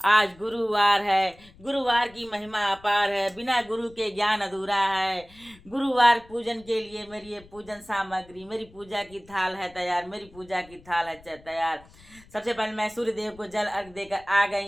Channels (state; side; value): noise; left; rumble, 24 dB below the sound